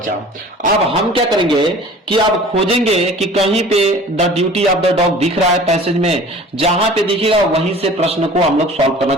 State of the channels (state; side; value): normal; both; correlation 0.45